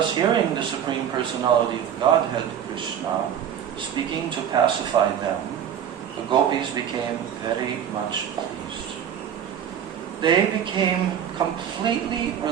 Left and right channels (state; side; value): quieter; left; 9.1 dB